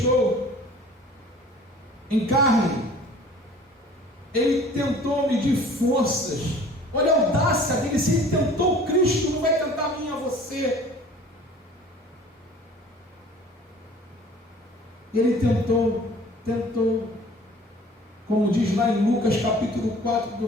em carne, ele tentou medir forças. Olha a audácia dele. Se ele tentou Cristo, não vai tentar a mim, a você. Ele tentou, como diz lá em Lucas capítulo 4, do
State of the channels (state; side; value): normal; both; correlation 0.48